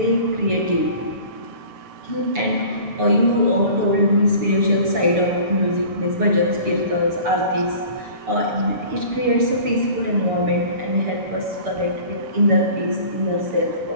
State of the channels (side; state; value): left; late; 6.9 ms